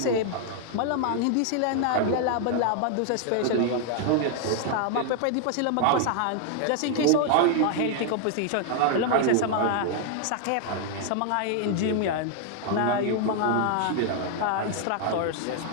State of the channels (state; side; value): different; both; correlation 0.00